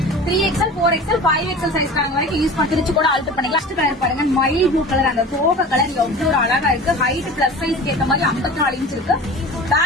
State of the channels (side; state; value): both; normal; correlation 0.37